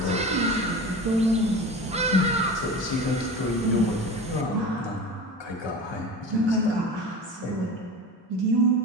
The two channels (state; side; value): normal; both; correlation 0.32